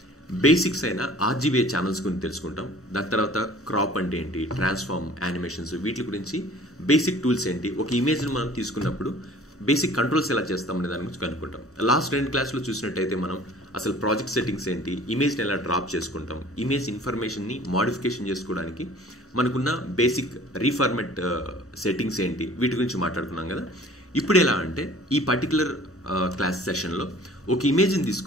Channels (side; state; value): both; normal; correlation 0.49